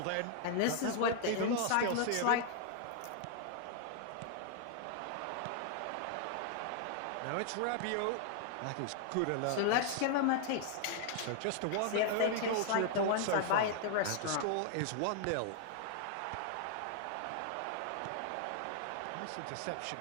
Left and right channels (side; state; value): both; different; correlation 0.00